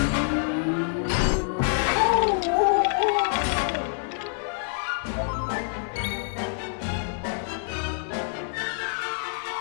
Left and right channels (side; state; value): right; silent; 61 dB below the other